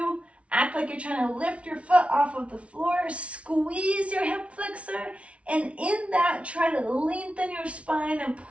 act like you're trying to lift your foot off of the floor. Squeeze your hip flexor, and in that, try to lengthen your spine and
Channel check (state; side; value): late; left; 0.062 ms